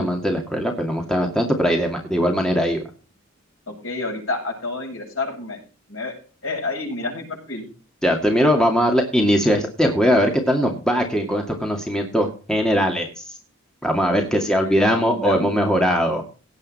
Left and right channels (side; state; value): both; normal; correlation 0.71